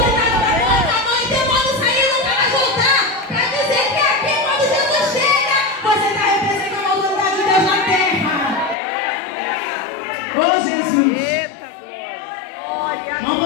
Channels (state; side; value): drops out; right; at 8.8 s